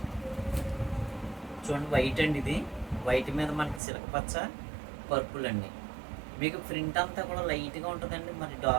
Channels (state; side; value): drops out; left; at 3.8 s